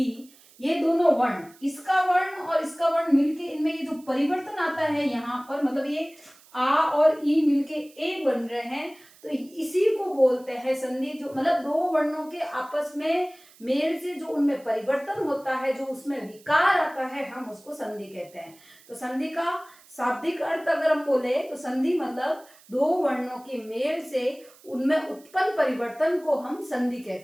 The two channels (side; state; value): right; noise; hiss, 26 dB below the sound